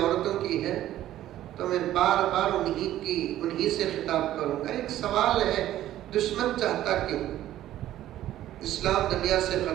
की है तो मैं बार बार उन्हीं से खिताब करूंगा। एक सवाल है, दुश्मन चाहता क्यों इस्लाम दुनिया से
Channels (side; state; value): left; quieter; 13.2 dB